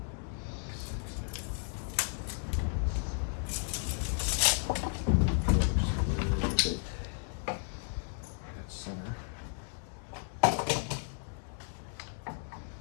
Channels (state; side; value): silent; right; 55 dB below the other